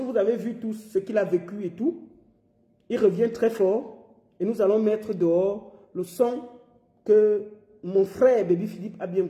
vous avez vu tout ce qu'il a vécu et tout, il revient très fort et nous allons mettre dehors le son que mon frère Baby Philippe a bien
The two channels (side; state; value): both; identical; correlation 1.00